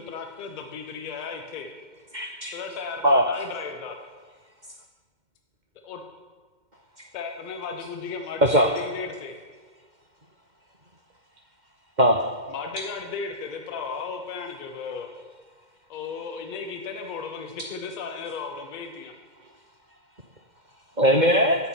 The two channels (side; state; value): left; late; 2.1 ms